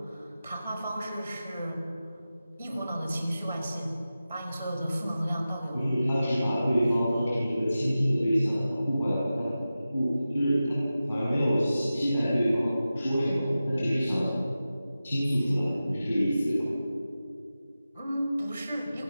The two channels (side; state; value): both; inverted; correlation -0.94